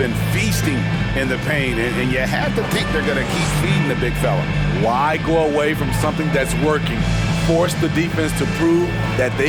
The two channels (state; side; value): identical; both; correlation 1.00